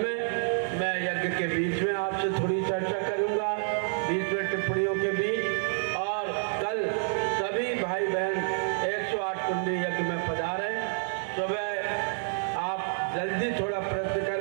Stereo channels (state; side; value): silent; left; 59 dB below the other